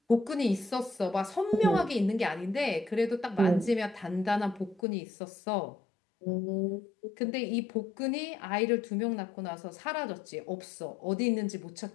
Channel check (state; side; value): drops out; right; at 4.8 s